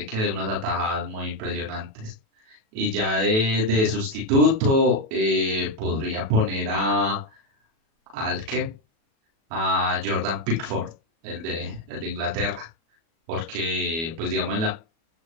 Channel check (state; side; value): late; left; 37 ms